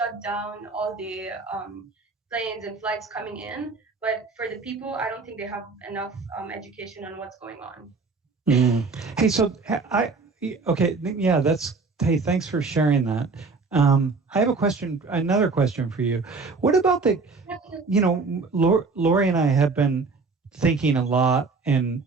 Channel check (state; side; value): quieter; left; 4.3 dB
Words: down all the planes and flights coming in. But for the people, I don't think they have enough education on what's going on. Hey, so hey, thanks for sharing that. I have another question for you. What about Lori and I have been thinking a lot